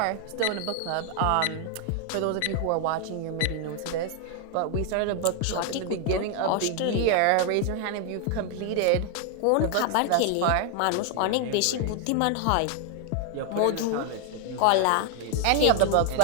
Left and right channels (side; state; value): both; different; correlation 0.00